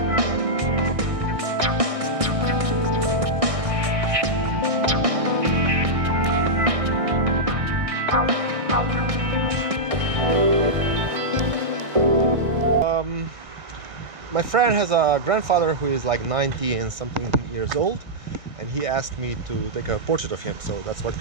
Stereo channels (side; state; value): left; late; 1.6 ms